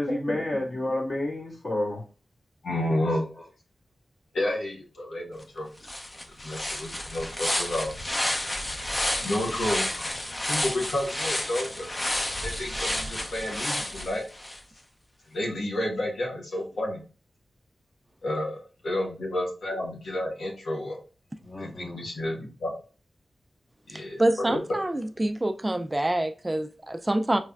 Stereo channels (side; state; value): both; normal; correlation 0.94